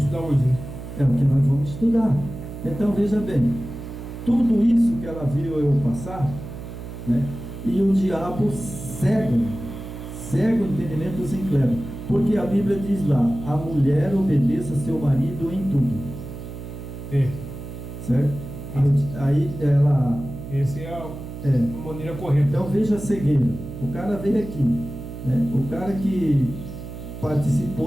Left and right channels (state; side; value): noise; right; hum, 10 dB below the sound